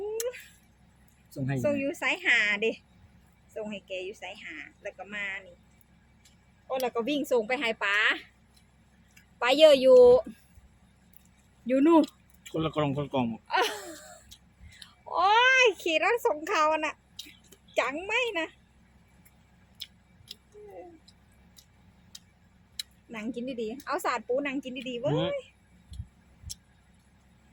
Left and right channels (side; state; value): both; identical; correlation 1.00